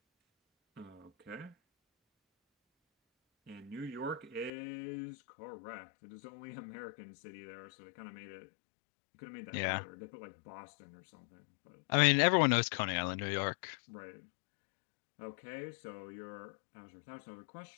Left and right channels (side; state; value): right; drops out; at 4.5 s